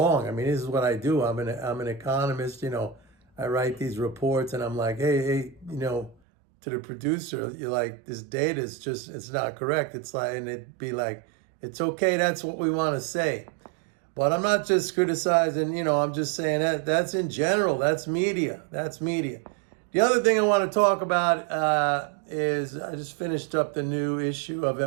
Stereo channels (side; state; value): left; drops out; at 6.2 s